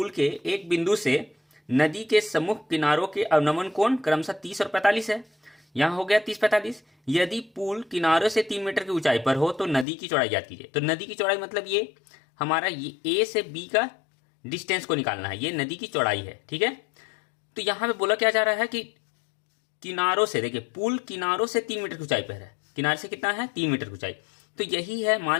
के एक बिंदु से नदी के सम्मुख किनारों के अवनमन कोण क्रमशः 30 और 45 है। यहाँ हो गया 30-45। यदि पुल किनारों से 3 मीटर की ऊंचाई पर हो तो नदी की चौड़ाई ज्ञात कीजिए। तो नदी की चौड़ाई मतलब ये हमारा ये ए से बी का डिस्टेंस को निकालना है, ये नदी की चौड़ाई है। ठीक है, तो यहाँ पे बोला क्या जा रहा है कि किनारों से, देखिए पुल किनारों से 3 मीटर की ऊंचाई पर है। किनारे से कितना है, 3 मीटर की ऊंचाई। तो यही है,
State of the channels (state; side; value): drops out; right; at 9.9 s